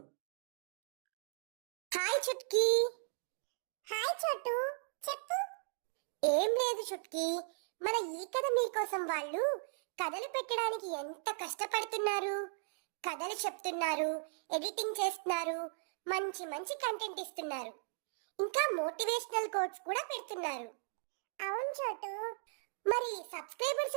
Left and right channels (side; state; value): left; silent; digital silence